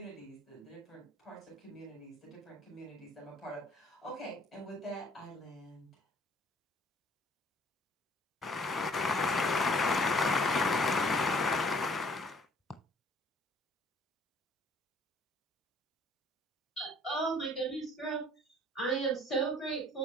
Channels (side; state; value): both; normal; correlation 0.57